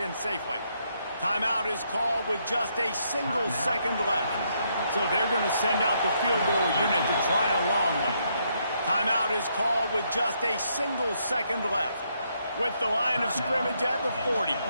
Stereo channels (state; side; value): inverted; both; correlation -0.75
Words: safely. Timeout is called with just a single second left. So they're going to send out the field goal unit to try a long one. Timeout is called with just a single second left. With the line of scrimmage at the 40,